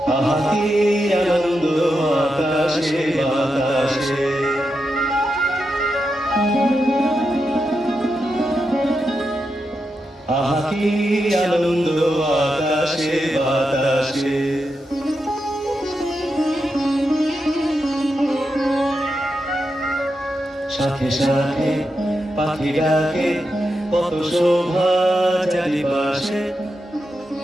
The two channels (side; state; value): both; normal; correlation 0.87